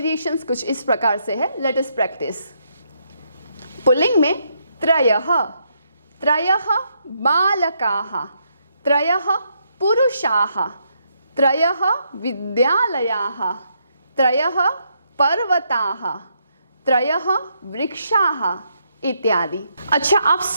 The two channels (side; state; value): both; inverted; correlation -0.76